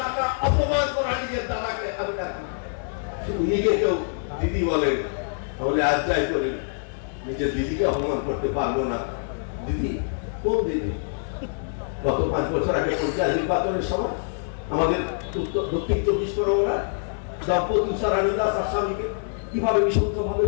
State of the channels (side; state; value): right; silent; 62 dB below the other